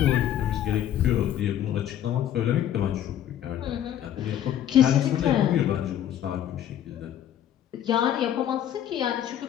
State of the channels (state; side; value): quieter; right; 10.8 dB